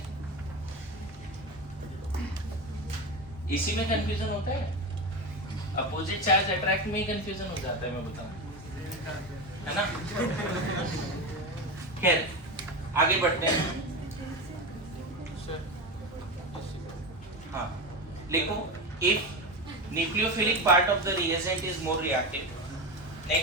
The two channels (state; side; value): normal; both; correlation 0.20